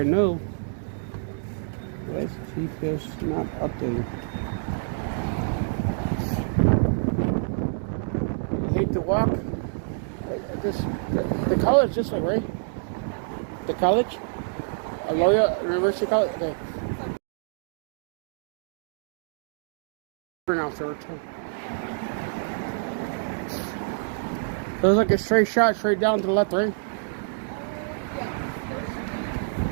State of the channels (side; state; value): left; silent; digital silence